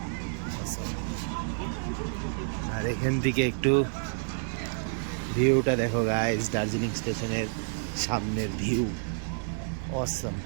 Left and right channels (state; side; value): silent; left; 58 dB below the other